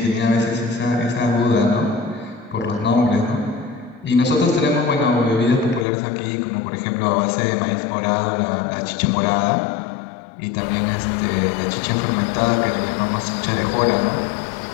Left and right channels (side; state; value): right; drops out; at 5.9 s